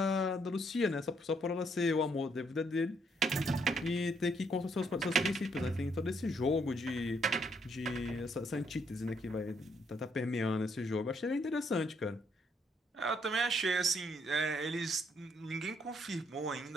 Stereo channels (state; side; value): normal; both; correlation 0.71